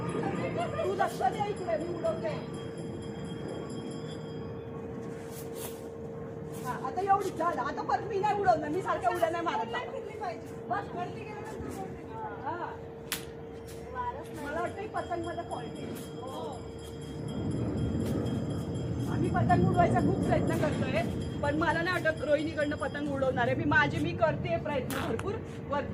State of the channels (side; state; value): both; identical; correlation 1.00